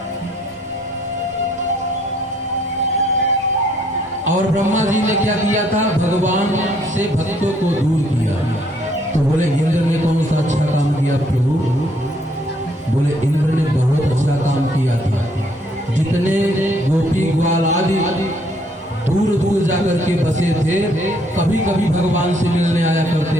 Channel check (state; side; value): normal; both; correlation 0.66